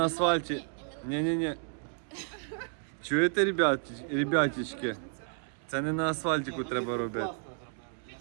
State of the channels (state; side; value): silent; left; 57 dB below the other